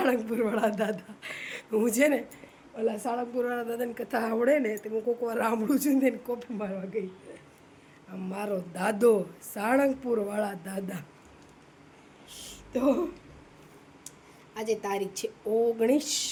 દાદા. હું છે ને ઓલા સાળંગપુરવાળા દાદાની કથા આવડે ને તો હું કોઈક વાર સાંભળું છું ને કોપી મારવા ગઈ. મારો દાદો સાળંગપુરવાળા દાદા. તો આજે તારીખ છે 19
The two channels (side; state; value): both; identical; correlation 1.00